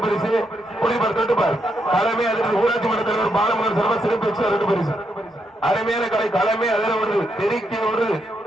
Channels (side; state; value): both; normal; correlation 0.80